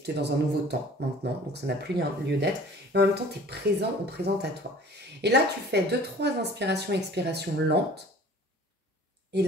tu es dans un nouveau temps maintenant, donc ça n'a plus lieu d'être, mais en même temps tu es présent ou présente à toi. Et là tu fais 2-3 inspirations, expirations lentes, et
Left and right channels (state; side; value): normal; both; correlation 0.48